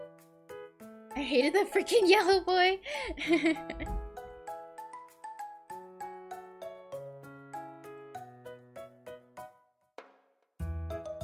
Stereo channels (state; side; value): identical; both; correlation 1.00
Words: I hated that freaking yellow boy.